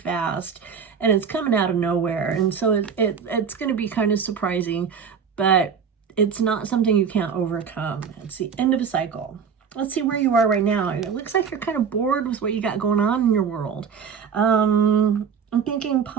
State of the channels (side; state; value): left; quieter; 6.6 dB